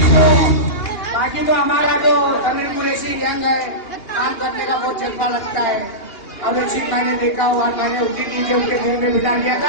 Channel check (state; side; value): late; right; 2.8 ms